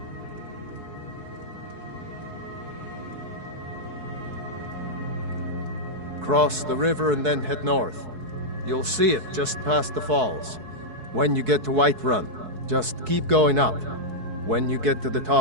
Cross the river and then head north. You'll see it just past the falls. When you get to Whiterun, just keep going up. When you get to the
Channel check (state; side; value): late; left; 4.7 ms